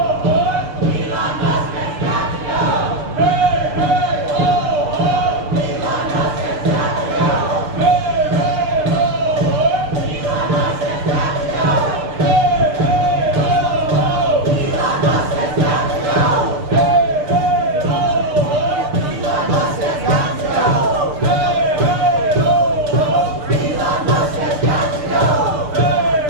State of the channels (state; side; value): late; left; 6.7 ms